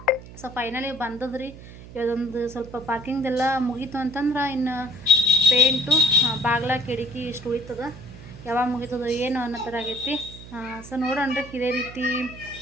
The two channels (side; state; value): right; noise; hum, 16 dB below the sound